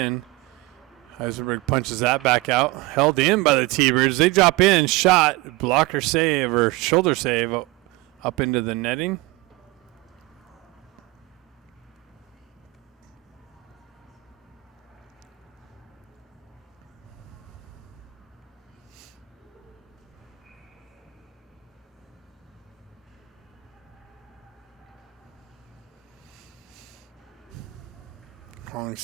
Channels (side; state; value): left; quieter; 21.7 dB